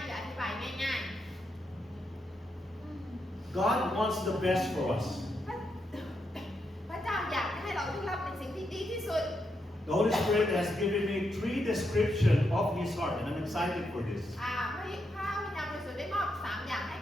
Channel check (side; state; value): both; normal; correlation 0.82